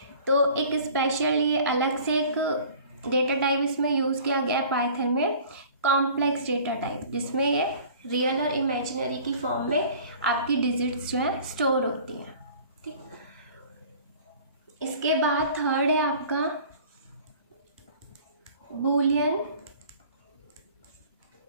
तो एक स्पेशल ये अलग से एक डेटा टाइप इसमें यूज़ किया गया है पाइथन में, कॉम्प्लेक्स डेटा टाइप, जिसमें ये रियल और इमेजिनरी की फॉर्म में आपकी डिजिट्स जो है स्टोर होती हैं, ठीक। इसके बाद थर्ड है आपका बूलियन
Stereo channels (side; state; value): both; inverted; correlation -0.47